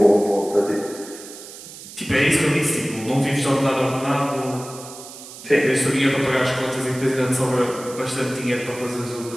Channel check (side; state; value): right; noise; hiss, 15 dB below the sound